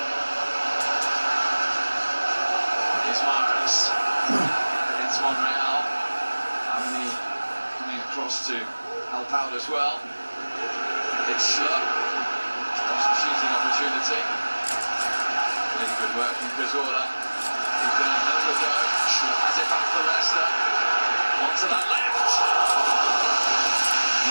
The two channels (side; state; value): both; inverted; correlation -1.00